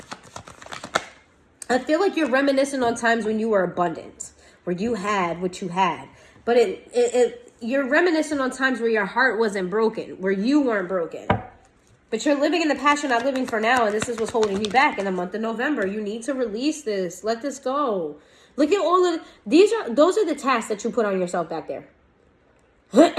I feel like you're reminiscing on times when you were abundant, where you had what you had. But you're reminiscing on times where your heart wasn't broken, where you weren't broken. But you're living in the past, you're not living for now, and this is what's holding you back in the month of November. You need to release this. Let this go. Look at all of those are the tasks that you put on yourself back there.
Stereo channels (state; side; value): identical; both; correlation 1.00